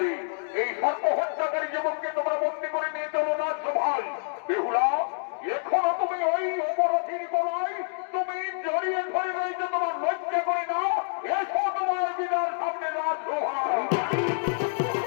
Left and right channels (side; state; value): right; silent; digital silence